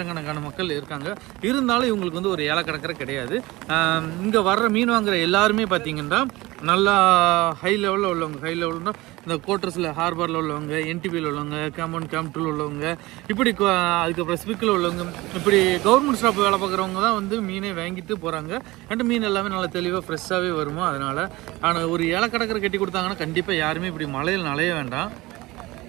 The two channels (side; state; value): left; quieter; 20.3 dB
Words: மக்கள் இருக்காங்க. இருந்தாலும் இவங்களுக்கு வந்து ஒரு ஏலக்கடற்கரை கிடையாது. இங்கே வர்ற மீன் வாங்குற எல்லாருமே பார்த்தீங்கன்னா நல்லா ஹை லெவலில் உள்ளவங்க. ஹை லெவல்னா இந்த கோட்டர்ஸில் ஹார்பரில் உள்ளவங்க, என்டிபியில் உள்ளவங்க, கேம்ப் 2 உள்ளவங்க, இப்படி அதுக்கப்புறம் ஸ்பிக்கில் உள்ளவங்க, இப்படி கவர்மெண்ட் ஸ்டாஃப் வேலை பார்க்குறவங்க தான் வந்து மீனை வாங்கிட்டு போகிறாங்க. அண்ட் மீன் எல்லாமே நல்லா தெளிவாக ஃப்ரெஷ்ஷாகவே வருமோ. அதனால் ஆனால் ஒரு ஏலக்கடற்கரை கட்டி கொடுத்தாங்கன்னா கண்டிப்பாக யாருமே இப்படி மழையில் நனைய வேண்டாம்.